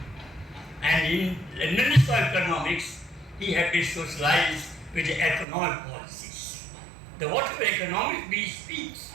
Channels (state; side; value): drops out; left; at 5.5 s